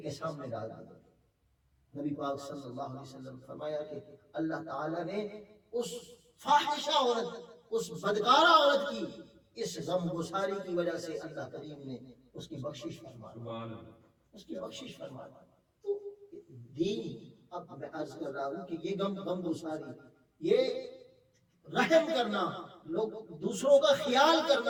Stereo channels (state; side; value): identical; both; correlation 1.00